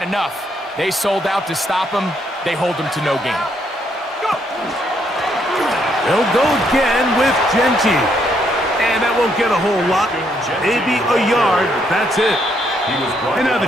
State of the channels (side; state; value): both; normal; correlation 0.73